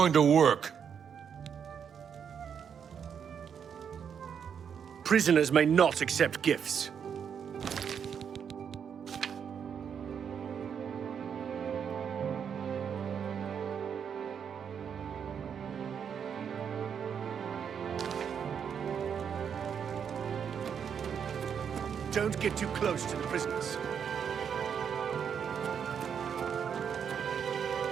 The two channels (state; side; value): quieter; left; 7.5 dB